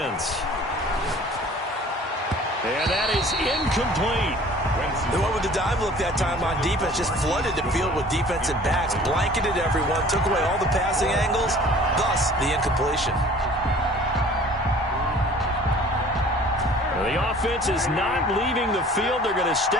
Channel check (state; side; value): normal; both; correlation 0.49